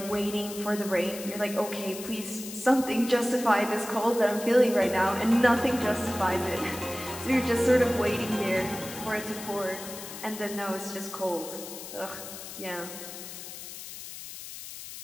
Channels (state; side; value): noise; left; hiss, 11 dB below the sound